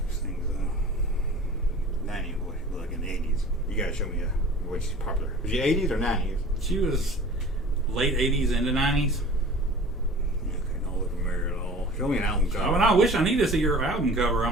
such things though. 90s, what she looked like in the 80s. You gotta show me what she's popular. Was she 80s or 90s? She was late 80s into 90s. Okay, don't look familiar at all. Show me an album cover. Oh, and I wish I need to see her album cover.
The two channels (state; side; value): normal; both; correlation 0.43